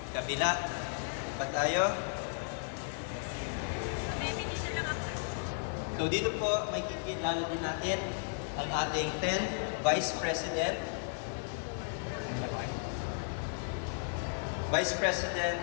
kabila. Pa tayo. So dito po, may kikilala din natin ang ating 10th Vice President. Vice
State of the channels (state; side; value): silent; right; digital silence